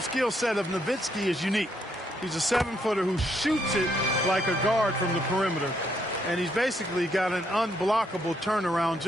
skill set of Nowitzki is unique. He's a 7-footer who shoots it like a guard from the perimeter. And he's basically got an unblockable turnaround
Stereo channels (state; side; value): normal; both; correlation 0.74